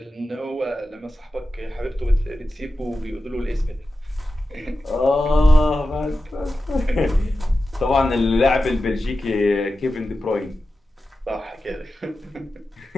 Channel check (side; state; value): both; normal; correlation 0.92